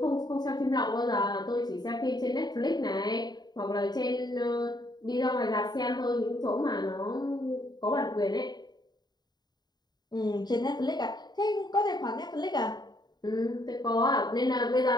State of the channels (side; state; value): right; late; 0.20 ms